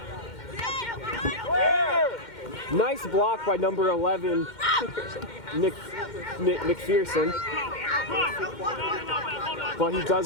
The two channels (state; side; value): late; right; 2.1 ms